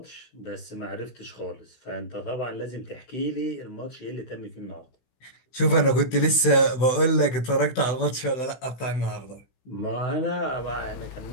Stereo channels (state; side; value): late; right; 16 ms